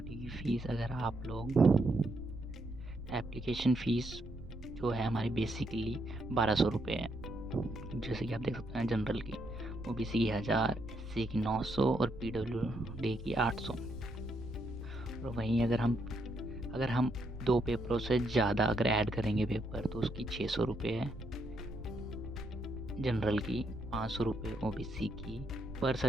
की फ़ीस। अगर आप लोग एप्लीकेशन फ़ीस जो है हमारी बेसिकली 1200 रुपये है। जैसे कि आप देख सकते हैं, जनरल की, ओबीसी की 1000, एससी की 900 और पीडब्ल्यूडी की 800। और वहीं अगर हम 2 पेपरों से ज़्यादा अगर ऐड करेंगे पेपर, तो उसकी 600 रुपये है जनरल की, 500 रुपये ओबीसी की। पर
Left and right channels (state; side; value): noise; right; rumble, 13 dB below the sound